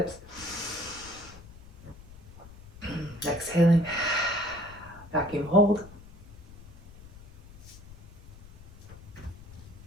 Exhaling. Vacuum hold.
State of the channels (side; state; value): left; noise; rumble, 18 dB below the sound